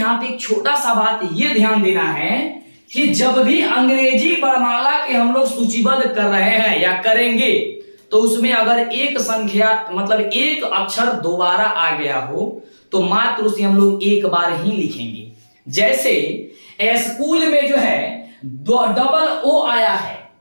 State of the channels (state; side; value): inverted; both; correlation -1.00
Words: पे एक छोटा सा बात ये ध्यान देना है कि जब भी अंग्रेजी वर्णमाला के हम लोग सूचीबद्ध कर रहे हैं या करेंगे, तो उसमें अगर एक संख्या मतलब एक अक्षर दोबारा आ गया हो तो मात्र उसे हम लोग एक बार ही लिखेंगे। जैसे स्कूल में जो है डबल ओ आया है,